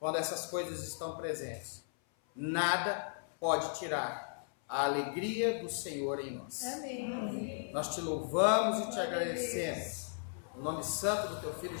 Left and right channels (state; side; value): silent; right; 54 dB below the other